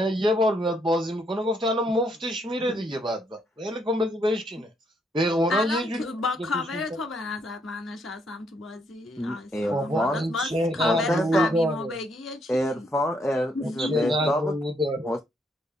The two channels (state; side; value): normal; both; correlation 0.73